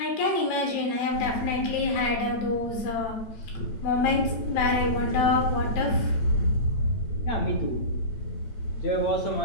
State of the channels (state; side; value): late; right; 9.0 ms